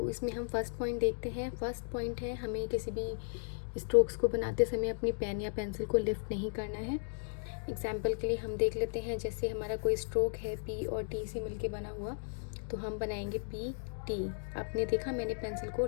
इसमें हम फर्स्ट पॉइंट देखते हैं। फर्स्ट पॉइंट है, हमें किसी भी स्ट्रोक्स को बनाते समय अपनी पेन या पेंसिल को लिफ्ट नहीं करना है। एग्जाम्पल के लिए हम देख लेते हैं, जैसे हमारा कोई स्ट्रोक है पी और टी से मिलके बना हुआ, तो हम बनाएंगे पी टी। आपने देखा मैंने पेंसिल को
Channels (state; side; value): silent; right; digital silence